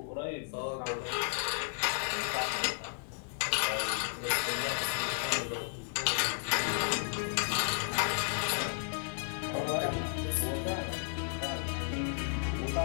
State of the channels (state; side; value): silent; right; 55 dB below the other